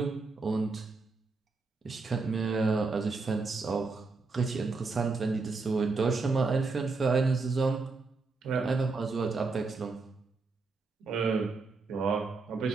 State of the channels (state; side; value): quieter; left; 4.0 dB